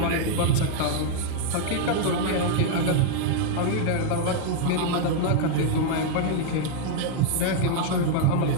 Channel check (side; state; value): both; different; correlation 0.00